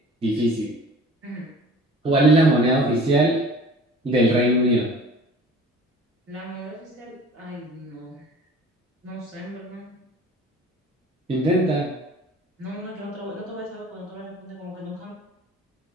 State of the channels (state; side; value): normal; both; correlation 0.45